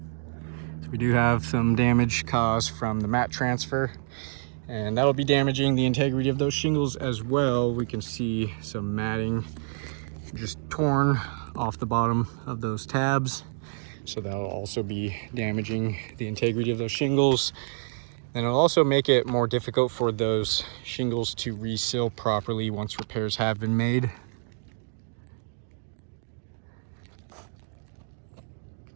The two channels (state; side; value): silent; left; digital silence